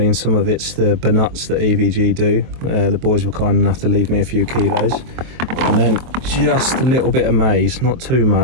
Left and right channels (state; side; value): late; left; 23 ms